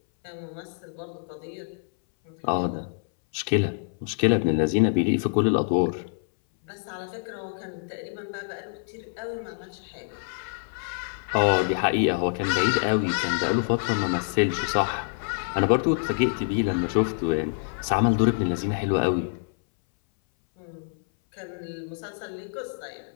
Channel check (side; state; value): right; silent; 60 dB below the other